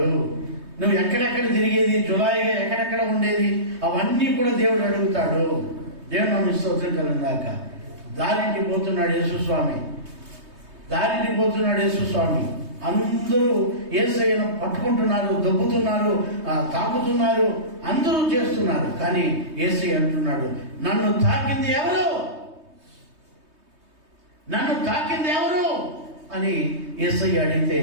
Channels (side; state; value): left; late; 3.2 ms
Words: నువ్వు ఎక్కడెక్కడ తిరిగేది, జులాయిగా ఎక్కడెక్కడ ఉండేది, అవన్నీ కూడా దేవుడు అడుగుతాడు. దేవుడు నన్ను స్తోత్రం కలుగుగాక. దారింటికి పోతున్నాడు యేసుస్వామి, దారింటికి పోతున్నాడు యేసుస్వామి. అందరూ యేసయ్యను పట్టుకుంటున్నారు, దొబ్బుతున్నారు, తాకుతున్నారు, అందరూ చేస్తున్నారు. కానీ యేసయ్య అంటున్నాడు, నన్ను తాకింది ఎవరు, నన్ను తాకింది ఎవరు అని యేసయ్య అడిగితే